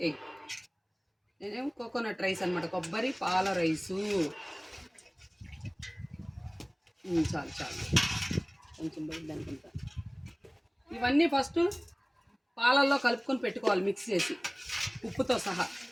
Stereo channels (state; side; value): identical; both; correlation 1.00